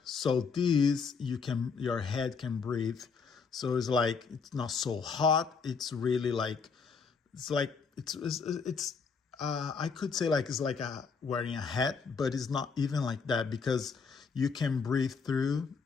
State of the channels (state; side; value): quieter; right; 5.4 dB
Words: So this, your head can breathe. So it's like, it's not so hot. It's really like, it's I could say like it's like wearing a hat, but it's not even like that, because you can breathe through,